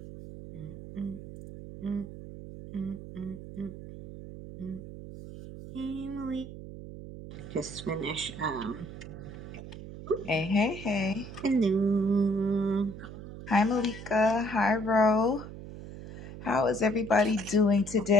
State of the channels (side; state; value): right; noise; hum, 12 dB below the sound